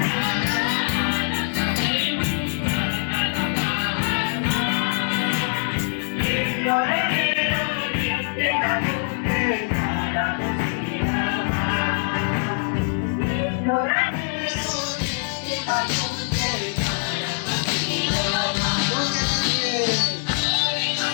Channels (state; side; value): silent; right; digital silence